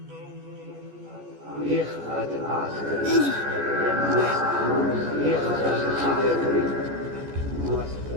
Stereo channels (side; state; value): left; late; 14 ms